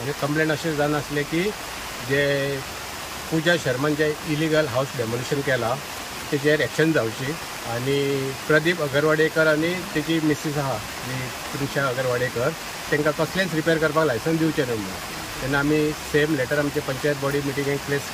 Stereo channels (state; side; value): identical; both; correlation 1.00